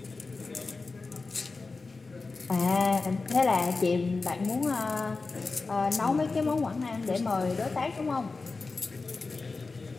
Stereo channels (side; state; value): right; quieter; 4.0 dB